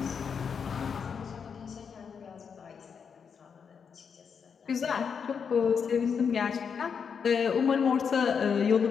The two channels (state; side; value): quieter; right; 6.5 dB